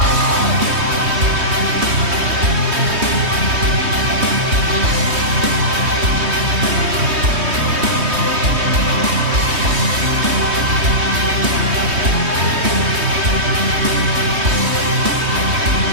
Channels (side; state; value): left; late; 3.2 ms